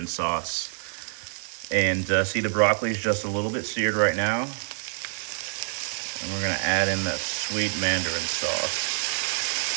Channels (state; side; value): silent; left; 60 dB below the other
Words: sauce. And see, the broccoli is just a little bit seared right now. And we're going to add in that sweet Mandarin sauce.